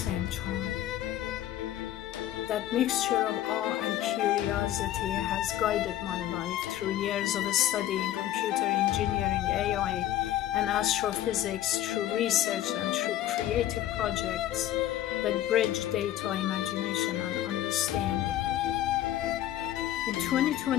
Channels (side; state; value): right; quieter; 12.7 dB